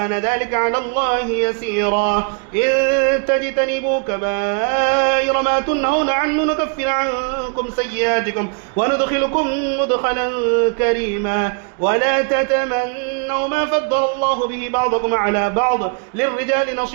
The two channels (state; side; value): quieter; left; 38.9 dB